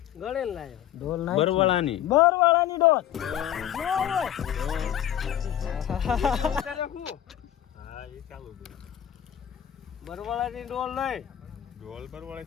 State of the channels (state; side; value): quieter; right; 11.2 dB